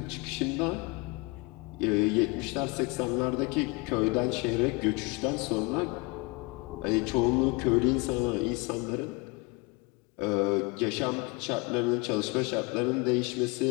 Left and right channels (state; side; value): quieter; right; 27.0 dB